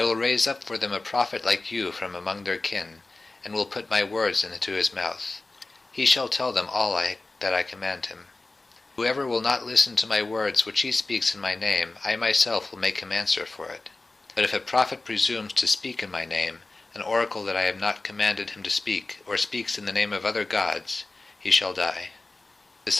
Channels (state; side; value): quieter; right; 3.2 dB